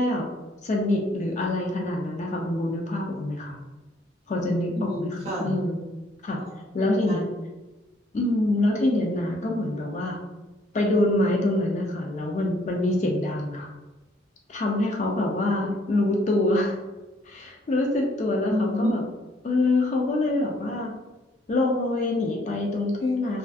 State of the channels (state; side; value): normal; both; correlation 0.65